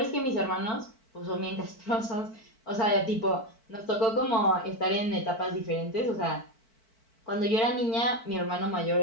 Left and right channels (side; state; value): right; late; 4.5 ms